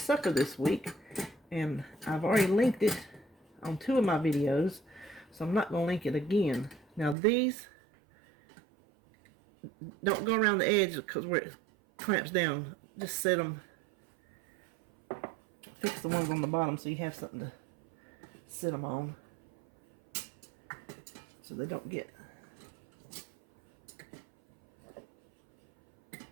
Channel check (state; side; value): drops out; left; at 7.2 s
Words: this week. And I've already linked it on 2 of my videos, so I'm not going to link it again. Now these, don't go around the edge because where it clamps down. Just set them, fix the ones on the bottom so you have something to sit them on, so they don't get.